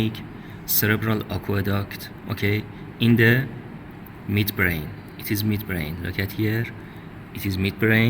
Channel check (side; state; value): both; identical; correlation 1.00